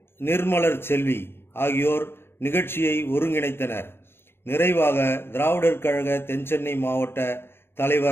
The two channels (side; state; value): right; late; 0.11 ms